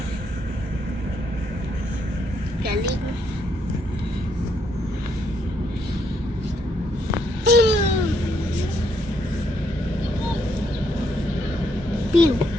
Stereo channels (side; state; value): both; normal; correlation 0.74